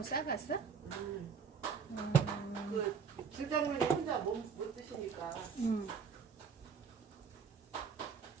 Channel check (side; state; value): left; quieter; 6.0 dB